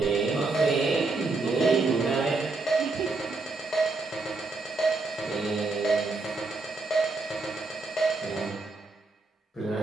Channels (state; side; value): quieter; left; 3.6 dB